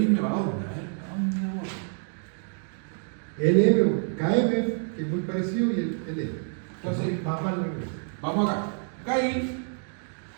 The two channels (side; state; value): left; silent; 57 dB below the other